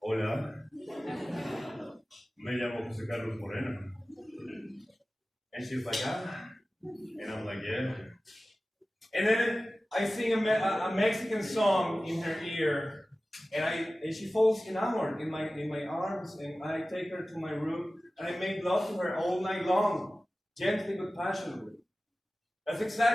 hola, me llamo Jose Carlos Moreno. And she's like, ah. And I'm like, yeah. And then I sing a Mexican song in her ear, and she falls enamored in my arms, and I take her to my room, and I make love to her all night long, gently but passionately. That's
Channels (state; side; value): normal; both; correlation 0.96